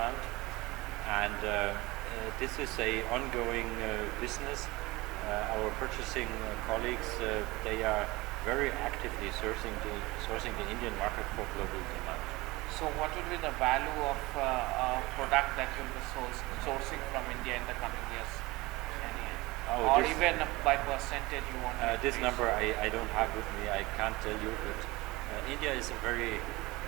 and this is a ongoing business. Our purchasing colleagues, they are very actively sourcing the Indian market for global demand. So what will be the value of product that you'll be sourcing from India in the coming years? Or even by percentage you want to this number I don't have with me, I can't tell you, but India is a very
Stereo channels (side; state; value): left; quieter; 21.5 dB